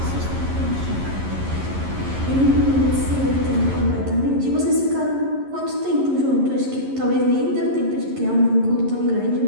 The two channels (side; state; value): left; late; 11 ms